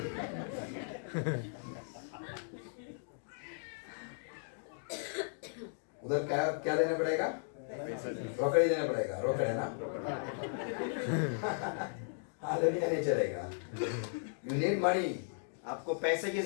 उधर क्या देना पड़ेगा? रोकड़े देना पड़ेगा। रोकड़े ना? हालेलुया नहीं चलेगा। You need money. आपको पैसे की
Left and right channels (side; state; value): right; silent; digital silence